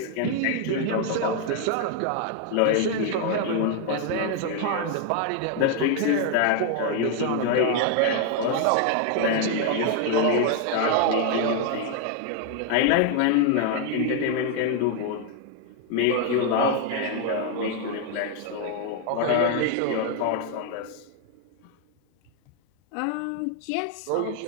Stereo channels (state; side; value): different; both; correlation 0.01